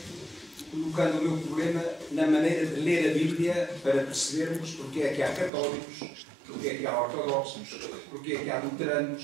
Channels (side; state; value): left; drops out; at 5.5 s